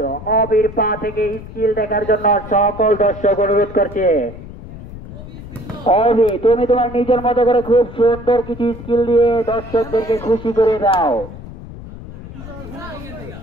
অবির পা থেকে স্কিল দেখার জন্য সকল দর্শক অনুরোধ করছে। অবি তুমি তোমার নিজের মতো করে খুব সুন্দর কিছু স্কিল দিয়ে দর্শকদেরকে খুশি করে দাও।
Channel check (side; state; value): left; noise; rumble, 13 dB below the sound